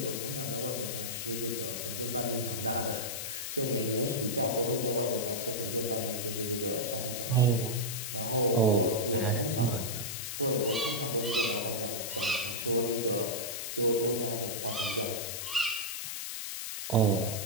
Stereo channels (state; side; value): noise; left; hiss, 5 dB below the sound